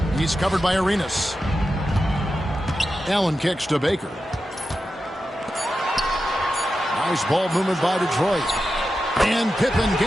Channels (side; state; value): both; normal; correlation 0.90